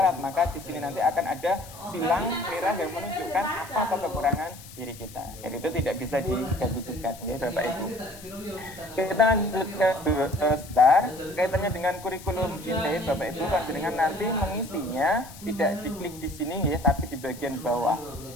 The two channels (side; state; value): left; noise; hiss, 18 dB below the sound